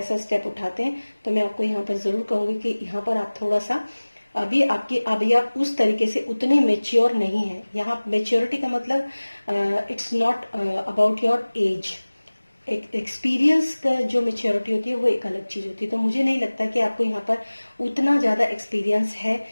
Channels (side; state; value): both; inverted; correlation -1.00